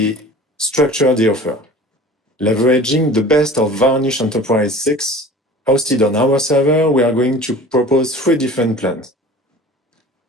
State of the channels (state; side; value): normal; both; correlation 0.42